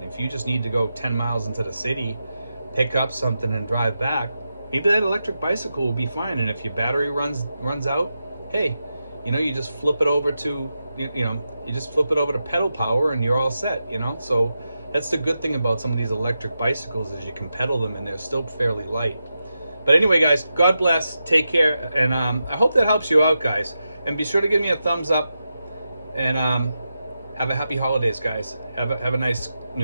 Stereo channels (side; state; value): both; inverted; correlation -0.89